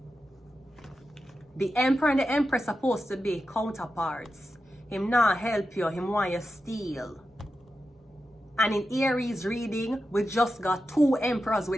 The emperor and the empress supposed to be counterparts. Him not help you, him want your steal. And in Aries reading, we just got 2 emperors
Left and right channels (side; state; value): both; normal; correlation 0.90